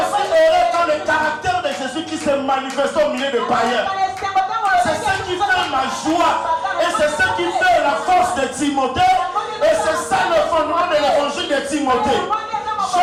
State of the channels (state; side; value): identical; both; correlation 1.00